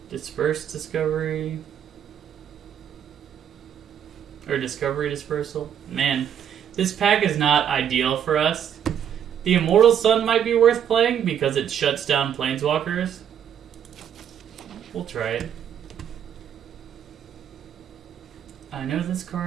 Disperse Discovery. Or Discovery Dispersal. Man, this pack is not ideal for us. The Immortal Sun might be worth playing because it shuts down Planeswalkers. We'll try it. I know this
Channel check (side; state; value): left; quieter; 9.1 dB